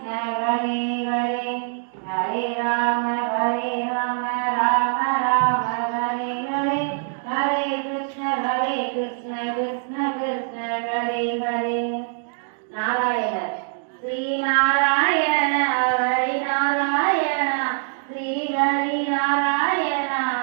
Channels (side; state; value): left; silent; 62 dB below the other